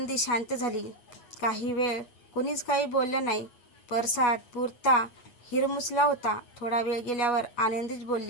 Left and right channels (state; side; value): late; right; 8.3 ms